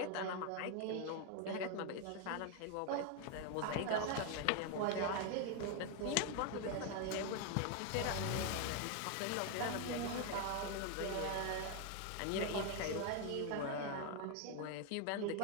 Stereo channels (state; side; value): different; both; correlation 0.01